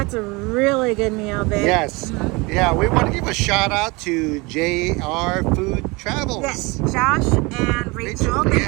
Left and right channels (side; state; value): left; quieter; 25.5 dB